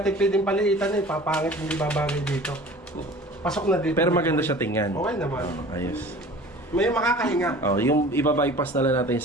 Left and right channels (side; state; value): both; normal; correlation 0.43